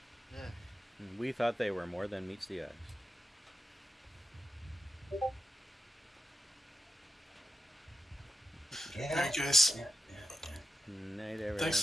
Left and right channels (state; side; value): normal; both; correlation 0.90